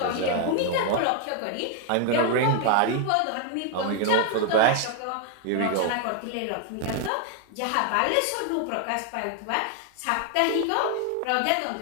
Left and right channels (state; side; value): different; both; correlation 0.00